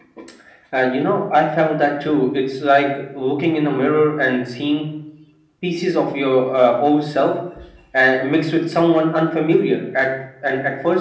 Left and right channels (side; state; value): both; identical; correlation 1.00